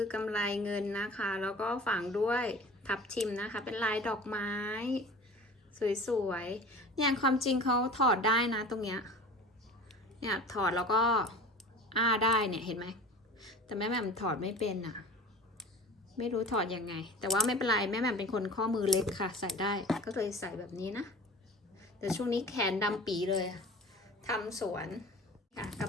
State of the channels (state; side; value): normal; both; correlation 0.39